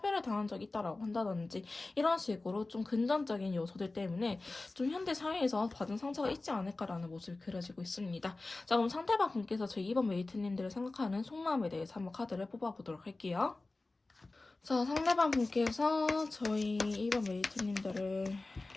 당한 적이 있다라고 한다든지 이런 식으로 좀 금전적인 요소들 때문에 좀 현대 사회에서 받은 상처가 있지 않을까라는 모습이 그려지고 있습니다. 자, 그럼 상대방 분께서 저희 2번 메이트님들을 생각하는 속마음에 대해서 한번 카드를 뽑아보도록 할게요. 자, 상대방 분께서 저희 2번 메이트님들을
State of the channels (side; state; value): right; quieter; 3.2 dB